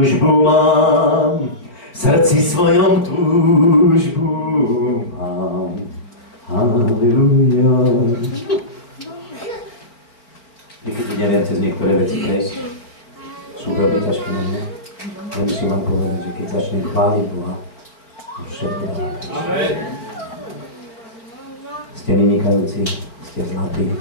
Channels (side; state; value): right; late; 4.4 ms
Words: mám, v srdci svojom túžbu mám. Halleluja. Niekedy neviem cez niektoré veci prejsť. Sú veľmi ťažké na mňa. Ale musím vám povedať, že keď začnem chváliť Boha, všetko dáva preč. Ste vynikajúci, ste zlatí.